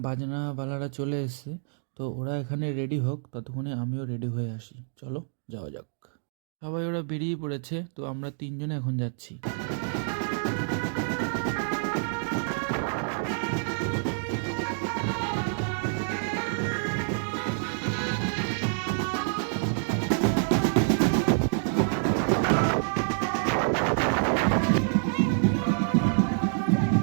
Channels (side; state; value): left; silent; digital silence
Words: বাজনাওয়ালারা চলে এসছে। তো ওরা এখানে রেডি হোক, ততক্ষণে আমিও রেডি হয়ে আসি। চলো যাওয়া যাক। সবাই ওরা বেরিয়ে পড়েছে, তো আমরা তিনজনে এখন যাচ্ছি।